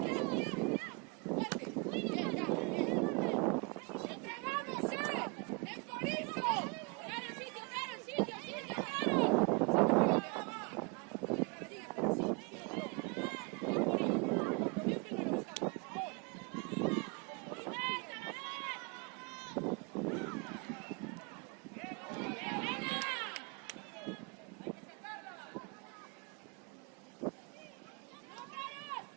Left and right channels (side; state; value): left; quieter; 31.8 dB